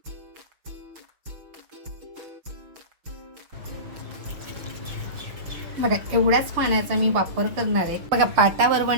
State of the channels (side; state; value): left; late; 6.2 ms